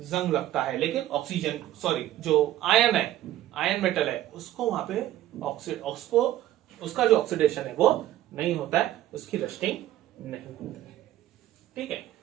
जंग लगता है, लेकिन ऑक्सीजन, सॉरी, जो आयन है, आयन मेटल है, उसको वहां पे उसको उसका जो ऑक्सीडेशन है वो नहीं होता है, उसकी रस्टिंग नहीं होती है। ठीक है,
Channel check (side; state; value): left; quieter; 13.7 dB